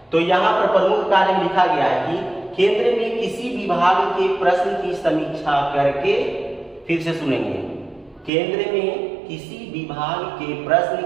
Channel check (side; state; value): left; drops out; at 8.3 s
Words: तो यहाँ पर प्रमुख कार्य लिखा गया है कि केंद्र में किसी विभाग के प्रश्न की समीक्षा करके, फिर से सुनेंगे, केंद्र में किसी विभाग के प्रश्न